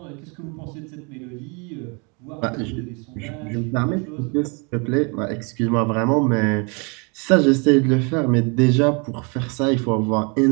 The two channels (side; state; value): left; quieter; 32.8 dB